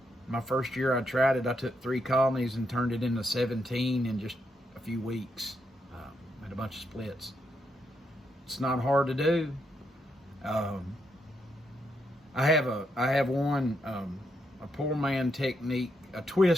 My first year I tried it, I took 3 colonies and turned it into 17 in just a few weeks. Had a bunch of splits. It's not hard to do. I have one, a poor man technique, a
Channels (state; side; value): normal; both; correlation 0.79